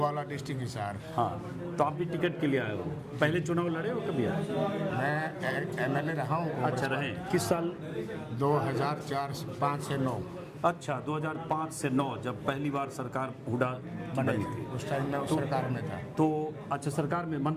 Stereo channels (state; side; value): identical; both; correlation 1.00